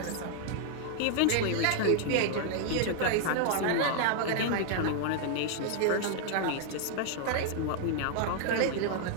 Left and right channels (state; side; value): different; both; correlation 0.00